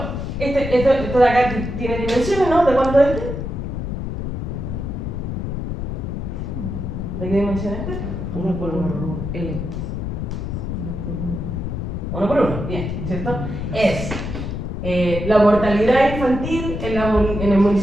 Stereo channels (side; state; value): left; noise; rumble, 4 dB below the sound